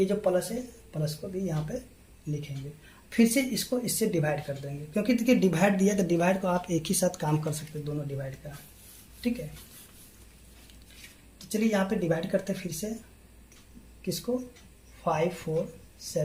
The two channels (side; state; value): both; identical; correlation 1.00